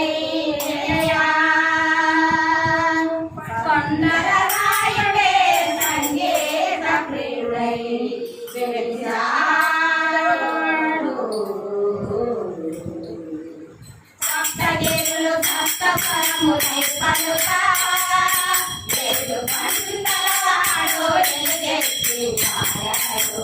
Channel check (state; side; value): identical; both; correlation 1.00